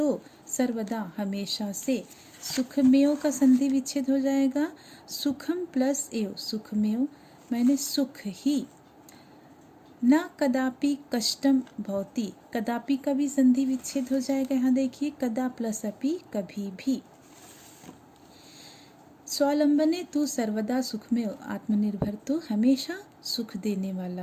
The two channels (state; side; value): identical; both; correlation 1.00